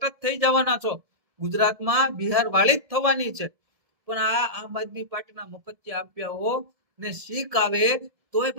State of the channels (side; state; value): left; late; 1.7 ms